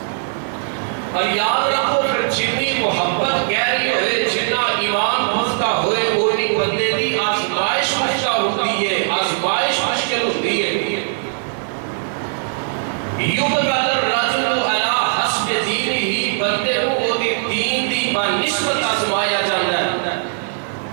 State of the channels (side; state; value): left; silent; 66 dB below the other